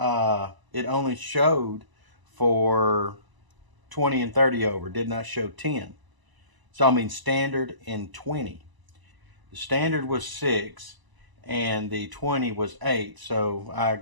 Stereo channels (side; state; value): left; late; 1.0 ms